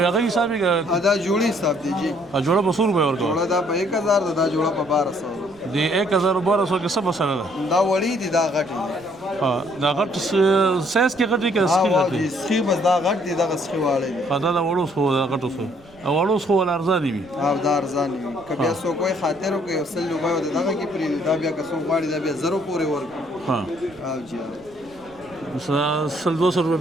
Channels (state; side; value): noise; right; rumble, 26 dB below the sound